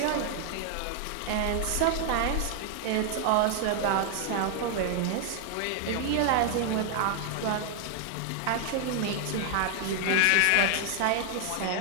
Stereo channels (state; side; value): different; both; correlation 0.00